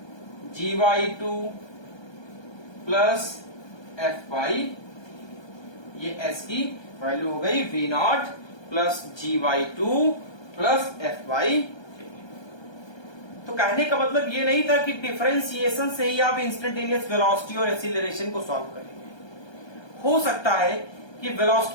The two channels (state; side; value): late; right; 1.3 ms